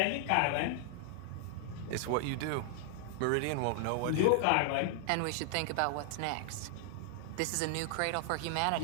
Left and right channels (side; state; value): both; different; correlation 0.00